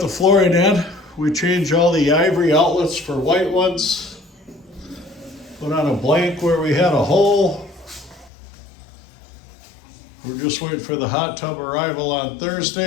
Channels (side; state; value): right; drops out; at 8.3 s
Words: the flooring in. We changed all the ivory outlets for white ones. Put on a blank where we had a hole. We're just waiting for the hot tub arrival on